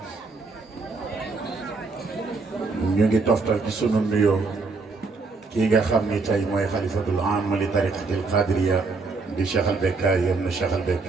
ñu ngi toftal ci sunu nuyoo kii nga xam ni tey mooy xalifatul aam li tariqatil qadiriya di Cheikh al Bekkaay ibn Cheikh al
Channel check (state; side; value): quieter; left; 4.0 dB